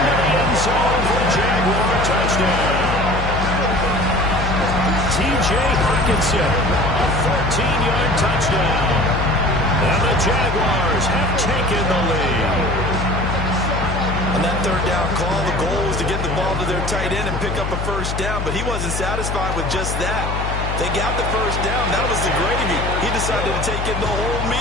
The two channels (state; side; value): noise; left; hum, 3 dB below the sound